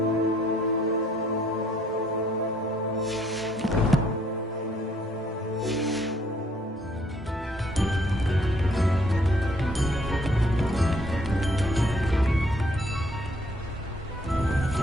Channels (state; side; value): normal; both; correlation 0.65